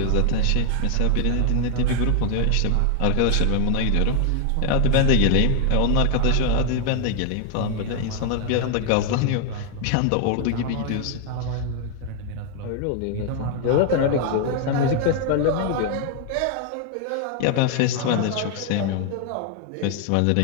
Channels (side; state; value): both; different; correlation 0.00